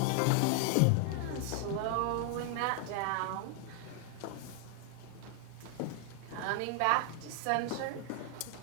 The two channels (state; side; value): different; both; correlation 0.00